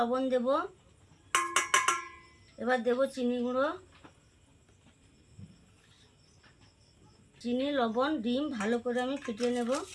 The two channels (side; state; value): both; identical; correlation 1.00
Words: দেব, এবার দেব চিনি গুঁড়ো। চিনি, লবণ, ডিম ভালো করে আমি ফুটিয়ে নেব।